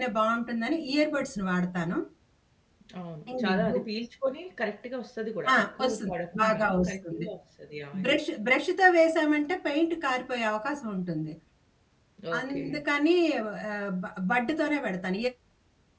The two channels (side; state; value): both; identical; correlation 1.00